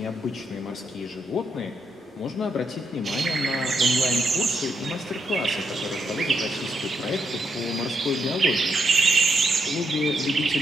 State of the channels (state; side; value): normal; both; correlation 0.79